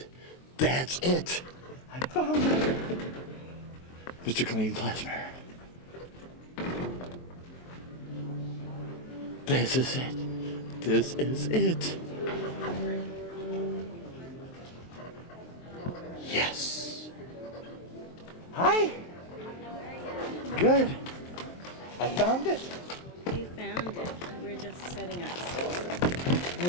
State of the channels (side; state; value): right; late; 23 ms